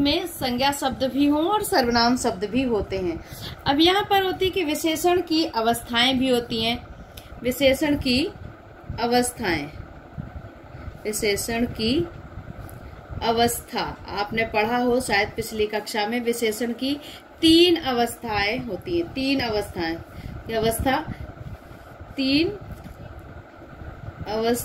संज्ञा शब्द भी हों और सर्वनाम शब्द भी होते हैं। अब यहाँ पर होती है कि विशेषण की अवस्थाएं भी होती हैं। विशेषण की अवस्थाएं, विशेषण की अवस्था आपने पढ़ा हो शायद पिछली कक्षा में। विशेषण की 3 अवस्थाएं होती हैं, 3 अवस्थाएं। अवस्था 3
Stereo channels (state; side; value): identical; both; correlation 1.00